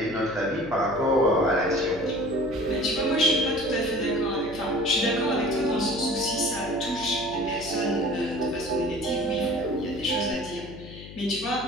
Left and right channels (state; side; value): noise; left; hum, 14 dB below the sound